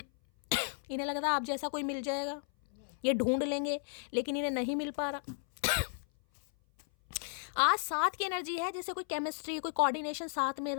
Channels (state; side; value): silent; right; 55 dB below the other